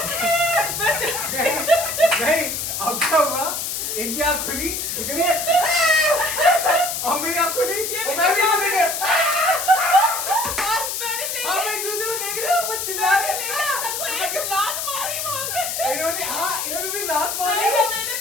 नहीं, अब क्या हुआ? इनकी आँख खुली, इतनी और मेरी आँख खुली, और मैं भी इनको देख रहा। हम एक दूसरे को देख रहे हैं, वो चिल्ला रहे हैं। इन्होंने भी लात मारी।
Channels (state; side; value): noise; left; hiss, 3 dB below the sound